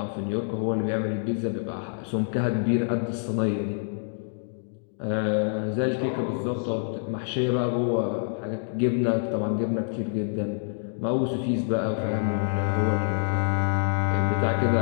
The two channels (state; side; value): silent; right; digital silence